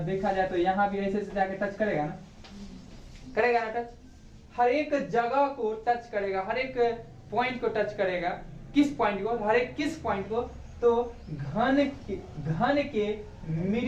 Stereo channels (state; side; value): identical; both; correlation 1.00